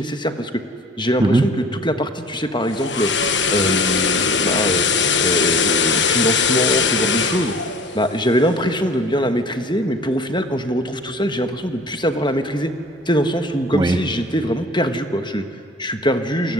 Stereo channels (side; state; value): both; normal; correlation 0.45